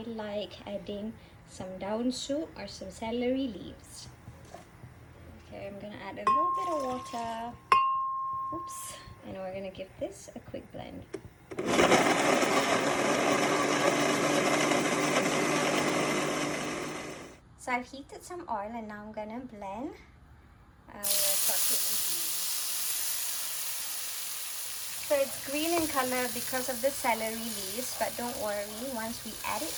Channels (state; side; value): identical; both; correlation 1.00